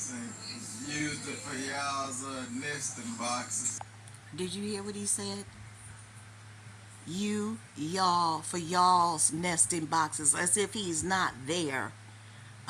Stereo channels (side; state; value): both; identical; correlation 1.00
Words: and used it for y'all's nesting boxes. Did you hear what he said? Y'all, for y'all's nesting boxes, as if he's not there.